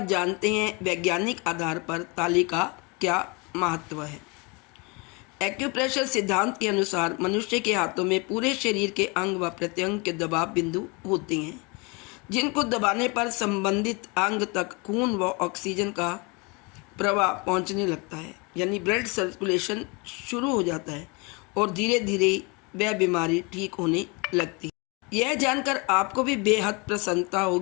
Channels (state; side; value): quieter; right; 29.1 dB